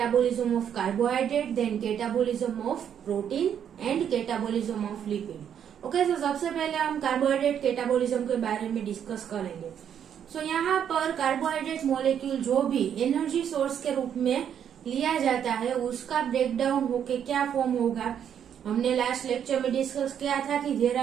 of carbohydrate, then catabolism of protein and catabolism of lipid. Okay, तो सबसे पहले हम कार्बोहाइड्रेट कैटाबोलिज्म के बारे में डिस्कस करेंगे. सो यहाँ पर कार्बोहाइड्रेट मॉलिक्यूल जो भी एनर्जी सोर्स के रूप में लिया जाता है उसका ब्रेक डाउन होके क्या फॉर्म होगा. हमने लास्ट लेक्चर में डिस्कस किया था कि there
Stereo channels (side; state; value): left; quieter; 8.8 dB